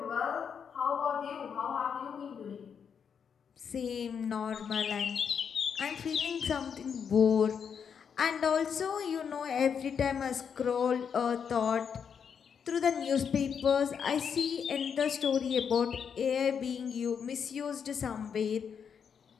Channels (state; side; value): quieter; right; 7.1 dB